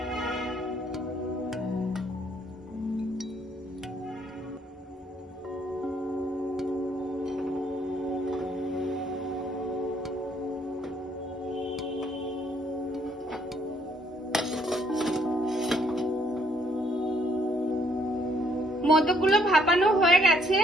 মোদকগুলো ভাপানো হয়ে গেছে,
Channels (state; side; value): normal; both; correlation 0.67